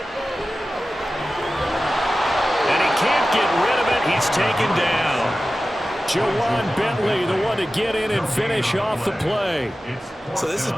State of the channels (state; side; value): normal; both; correlation 0.95